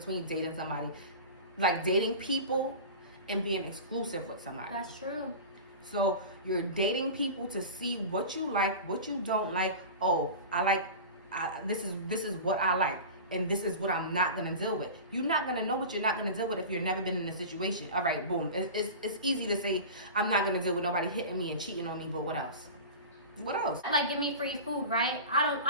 dating somebody, like dating people, and being exclusive with somebody. That's true. So you're dating people to see what you like, what you don't like. Oh, this is what I like, and this is what I'm not gonna deal with. You're not gonna know what you're not gonna deal with if you've never been in a situation. All right, boom. It's easy to say I'm not gonna deal with nobody hitting me and cheating on me, but what else? What else? Like, give me free food, right?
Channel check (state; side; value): inverted; both; correlation -0.32